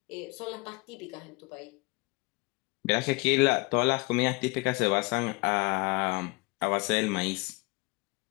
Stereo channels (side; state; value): right; quieter; 26.4 dB